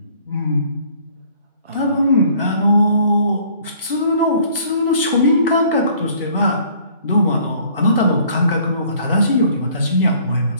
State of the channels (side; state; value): both; inverted; correlation -0.57